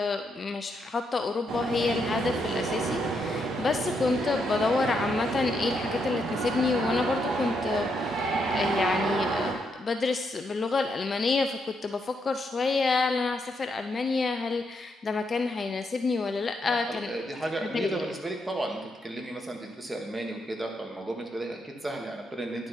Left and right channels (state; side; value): normal; both; correlation 0.79